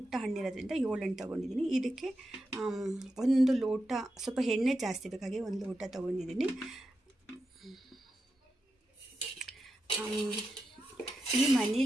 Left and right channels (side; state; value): both; normal; correlation 0.88